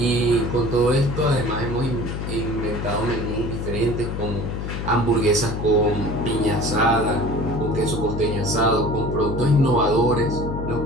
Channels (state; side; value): noise; left; hum, 4 dB below the sound